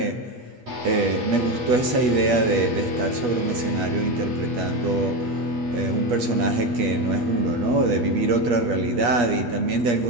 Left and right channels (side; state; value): left; late; 8.3 ms